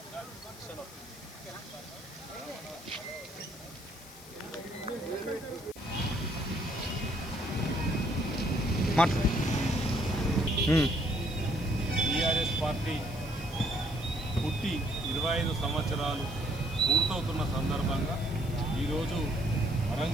TRS party పుట్టి 25 సంవత్సరాలు పూర్తవుతున్న సందర్భంగా ఈరోజు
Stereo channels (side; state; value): left; noise; hiss, 18 dB below the sound